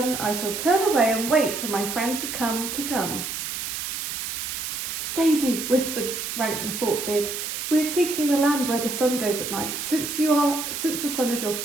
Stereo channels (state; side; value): noise; right; hiss, 4 dB below the sound